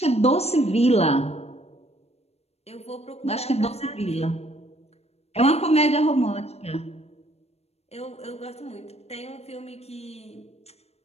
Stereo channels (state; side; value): late; right; 0.30 ms